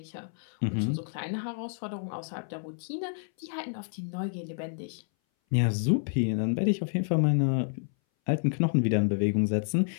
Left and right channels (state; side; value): silent; right; 58 dB below the other